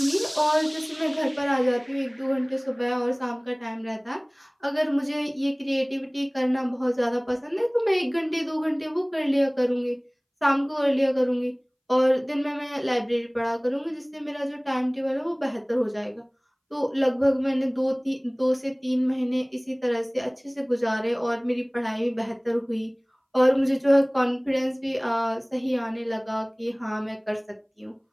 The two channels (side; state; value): both; identical; correlation 1.00